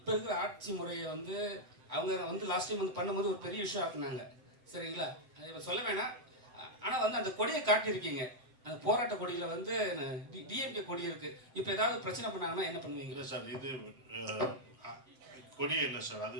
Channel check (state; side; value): late; left; 7.8 ms